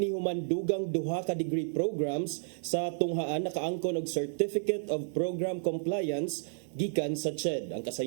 dugang duha ka degree programs sa tunghaan nakaangkon og Certificate of Program Compliance gikan sa CHED. Ang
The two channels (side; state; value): left; silent; digital silence